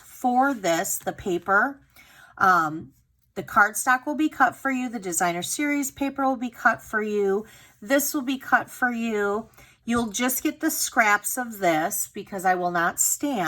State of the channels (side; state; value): both; identical; correlation 1.00